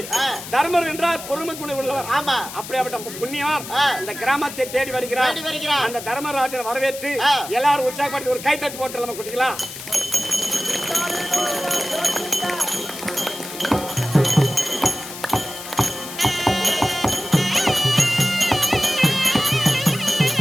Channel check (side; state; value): left; noise; hiss, 11 dB below the sound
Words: தர்மர் என்றால் பொறுமை குணம் உள்ளவர். அப்படியாப்பட்ட புண்ணியவர் இந்த கிராமத்தை தேடி வருகிறார். அந்த தர்மராஜன் வரவேற்று எல்லாரும் உற்சாகப்படுத்தி ஒரு கைத்தட்டு போட்டு நம்ம குட்டிக்கலாம்.